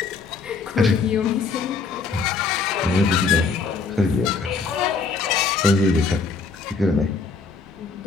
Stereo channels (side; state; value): right; quieter; 4.7 dB